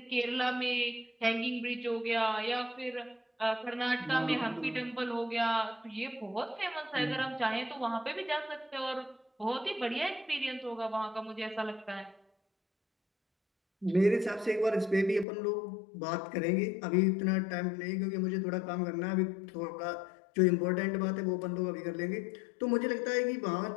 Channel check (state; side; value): drops out; right; at 15.2 s